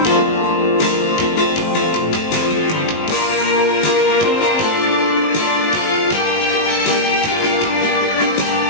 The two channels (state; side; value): late; right; 19 ms